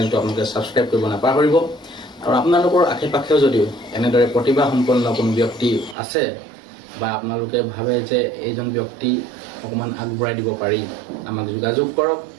আপোনালোকে ছাবস্ক্ৰাইব কৰিব নাপাহৰিব আৰু আপোনালোকৰ আশে পাশেও যদিও এনেদৰে প্ৰতিভাসম্পন্ন কোনো ব্যক্তি আছে বা আপোনালোকে ভাবে যে এইজন ব্যক্তি অকণমান আগবঢ়াই দিব পাৰি আমাক যোগাযোগ কৰক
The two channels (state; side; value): drops out; left; at 6.0 s